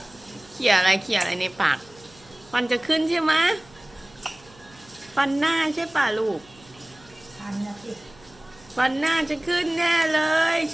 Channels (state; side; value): noise; right; hum, 26 dB below the sound